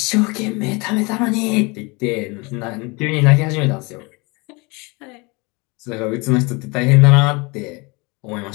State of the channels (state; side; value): quieter; right; 27.4 dB